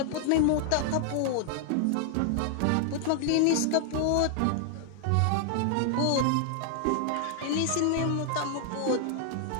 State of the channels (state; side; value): different; both; correlation 0.00